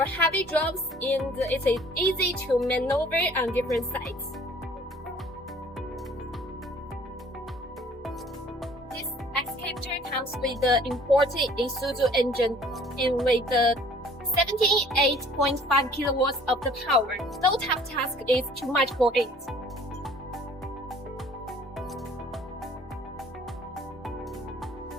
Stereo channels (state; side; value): normal; both; correlation 0.54